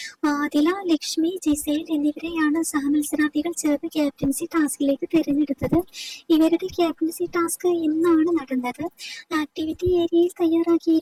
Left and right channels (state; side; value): identical; both; correlation 1.00